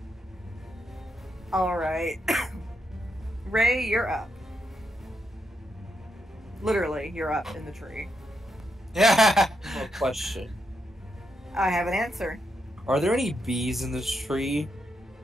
Alright. Ray, you're up. Literally, you're up in the tree. Yeah. A question. I have an answer. Are there any bees in this tree?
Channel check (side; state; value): both; normal; correlation 0.81